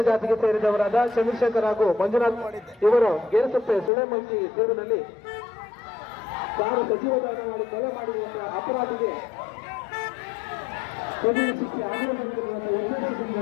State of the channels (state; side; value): drops out; right; at 3.9 s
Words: ಜಾತಿಗೆ ಸೇರಿದವರಾದ ಚಂದ್ರಶೇಖರ್ ಹಾಗೂ ಮಂಜುನಾಥ್ ಇವರು ಗೇರಸಪ್ಪೆ ಸುಳೆಮಲ್ಕಿ ತೀರ್ವಿನಲ್ಲಿ ಕಾರು ಸಜೀವ ದಹನ ಮಾಡಿ ಕೊಲೆ ಮಾಡಿರುವಂತಹ ಅಪರಾಧಿಗೆ ಕಠಿಣ ಶಿಕ್ಷೆ ಆಗಲೇಬೇಕೆನ್ನುವಂಥ ಉದ್ದೇಶದಿಂದ